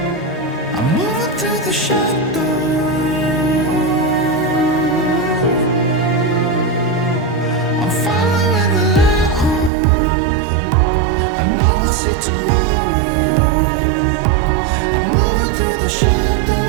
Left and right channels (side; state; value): left; drops out; at 9.7 s